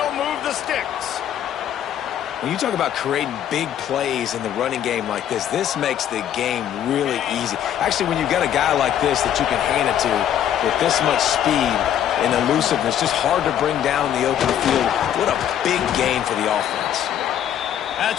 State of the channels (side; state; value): right; quieter; 10.3 dB